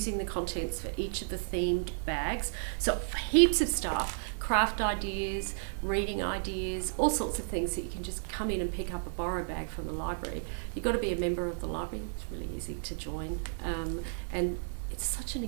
the contents for each of the themed bags. So heaps of stuff, craft ideas, reading ideas, all sorts of things that you can just come in and pick up a borrow bag from the library. You've got to be a member of the library. It's really easy to join. And it's such an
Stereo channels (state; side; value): silent; left; digital silence